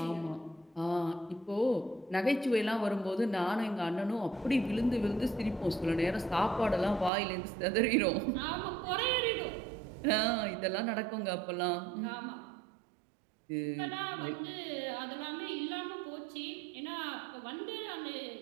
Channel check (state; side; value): drops out; left; at 7.1 s